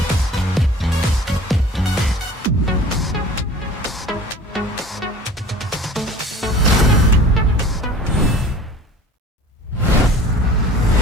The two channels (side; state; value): both; normal; correlation 0.44